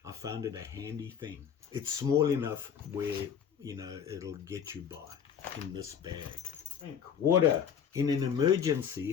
I found it a handy thing. It's small enough where, it'll get you by in this bag. Drink water. In an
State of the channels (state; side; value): quieter; right; 7.8 dB